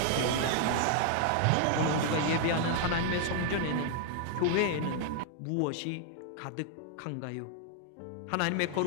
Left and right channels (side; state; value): both; different; correlation 0.00